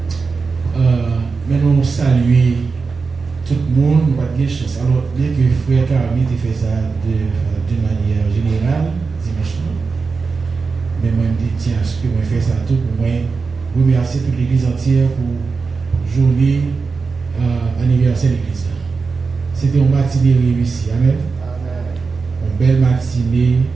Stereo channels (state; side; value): quieter; left; 4.6 dB